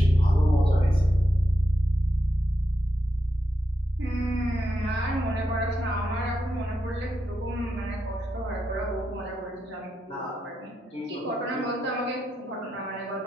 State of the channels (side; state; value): both; normal; correlation 0.85